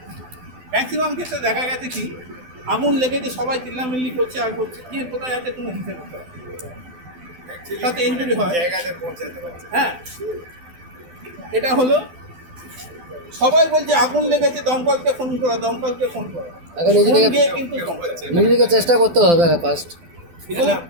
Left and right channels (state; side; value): late; left; 12 ms